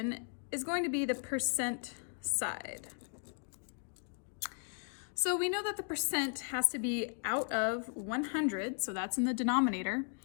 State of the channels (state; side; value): silent; right; 54 dB below the other